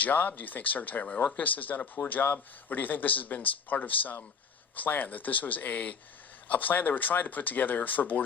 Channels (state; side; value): quieter; right; 6.0 dB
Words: Do you think Secretary Mayorkas has done a poor job? Or do you think this has been part of some plan, that this was a plan they were trying to put together for